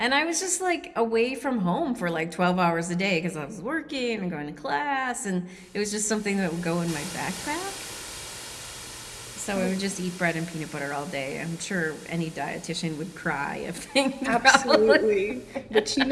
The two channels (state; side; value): identical; both; correlation 1.00